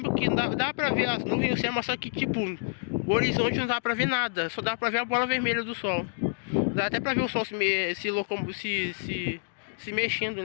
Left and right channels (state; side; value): silent; right; digital silence